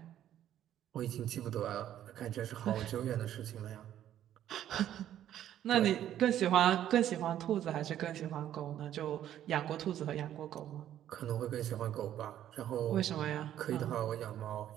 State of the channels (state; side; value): quieter; left; 11.4 dB